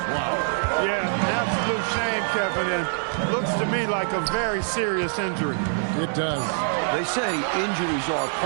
Wow. Yeah, an absolute shame, Kevin, and looks to me like a very serious injury. It does. They say injuries are a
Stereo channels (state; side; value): silent; left; 62 dB below the other